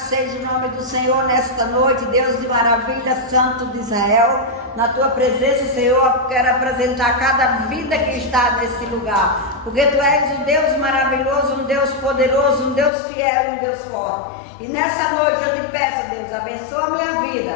seja o nome do Senhor nesta noite, Deus de maravilha, Santo de Israel. Na Tua presença, Senhor, quero apresentar cada vida que está nesse lugar, porque Tu és um Deus maravilhoso, um Deus poderoso, um Deus fiel e um Deus forte. E nessa noite eu te peço, Deus, abençoa a minha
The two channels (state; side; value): drops out; right; at 12.9 s